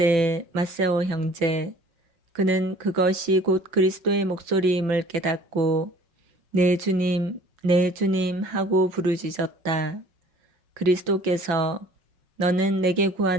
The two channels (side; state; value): left; late; 5.9 ms